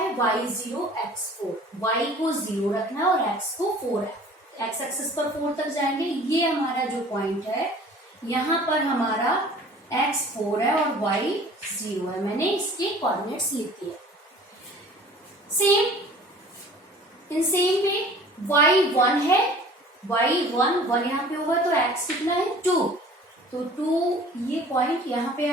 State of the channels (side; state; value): both; normal; correlation 0.47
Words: y0 x4, y को 0 रखना है और x को 4 है, x एक्सिस पर 4 तक जाएंगे। ये हमारा जो पॉइंट है, यहाँ पर हमारा x 4 है और y 0 है। मैंने इसके कोऑर्डिनेट्स लिख दिए। Same in same way y 1 है, y 1 यहाँ पे होगा तो x कितना है 2, तो 2 ये पॉइंट यहाँ पे